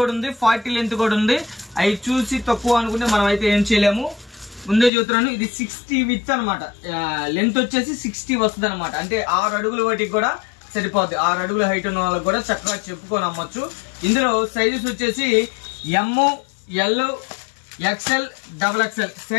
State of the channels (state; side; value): drops out; right; at 4.9 s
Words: ఉంది, 40 లెంత్ కూడా ఉంది. అవి చూసి తక్కువ అనుకుంటే మనం అయితే ఏం చేయలేము. ముందే చూస్తున్నాను. ఇది 60 విత్ అనమాట. లెంత్ వచ్చేసి 60 వస్తుంది అనమాట. అంటే 6 అడుగుల వాటికి కూడా సరిపోద్ది. 6 అడుగుల హైట్ ఉన్న వాళ్ళకి కూడా చక్కగా చెప్పుకొని అమ్మొచ్చు. ఇందులో సైజెస్ వచ్చేసి M, L, XL, XXL